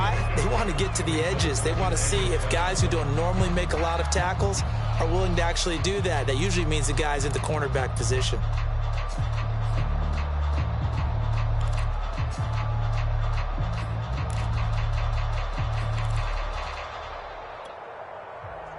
They want to get to the edges. They want to see if guys who don't normally make a lot of tackles are willing to actually do that. That usually means the guy's in the cornerback position.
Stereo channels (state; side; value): identical; both; correlation 1.00